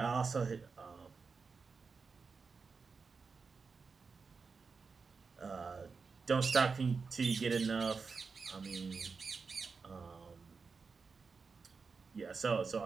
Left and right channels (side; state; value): left; quieter; 4.9 dB